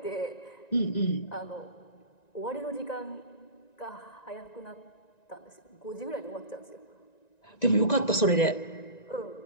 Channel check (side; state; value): right; late; 1.9 ms